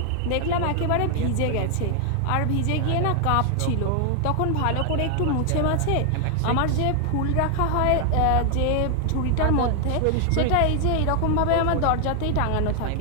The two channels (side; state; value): both; different; correlation 0.00